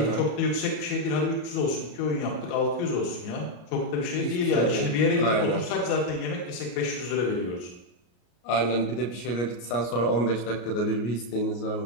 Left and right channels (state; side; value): late; right; 33 ms